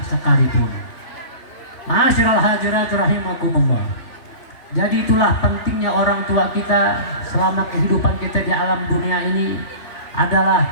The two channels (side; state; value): right; late; 3.0 ms